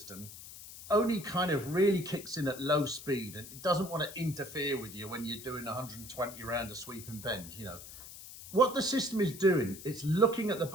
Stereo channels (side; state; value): left; noise; hiss, 14 dB below the sound